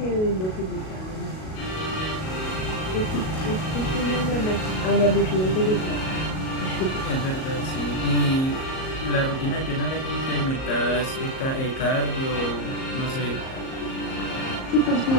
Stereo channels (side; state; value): right; late; 38 ms